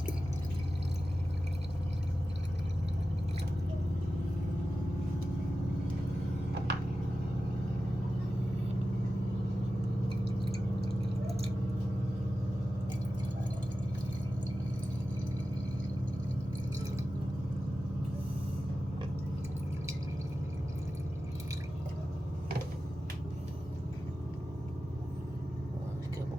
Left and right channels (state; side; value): normal; both; correlation 0.93